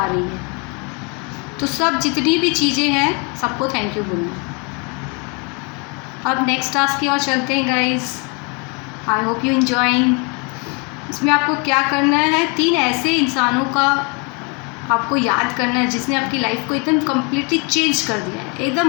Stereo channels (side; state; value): right; quieter; 32.7 dB